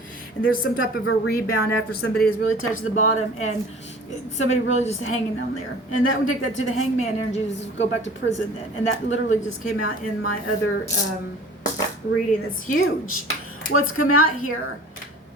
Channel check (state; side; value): normal; both; correlation 0.44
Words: And there's some type of a rebound after somebody has really touched the bottom and somebody really just hanging down there. And that would take that to the hangman energy, just go back to prison then. And that literally just came out in my other reading. That's huge. What's come out here?